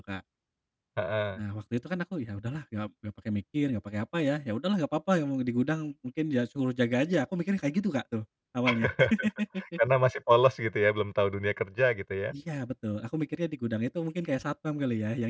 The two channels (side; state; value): both; identical; correlation 1.00